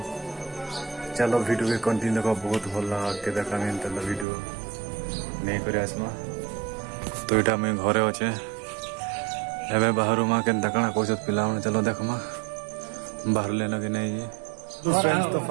चलो वीडियो भी कंटिन्यू का बहुत भल लगा के देखा वीडियो नहीं कर आसमा। तो यहाँ मुझे घरे अच्छे एवं बाहर माँ के कण कौन पिला चलो देखमा बाहर लेना कि नहीं। तो फ्रेंड्स तो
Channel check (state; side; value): drops out; left; at 4.2 s